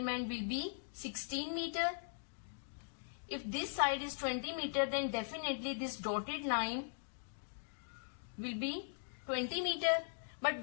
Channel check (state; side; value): silent; right; digital silence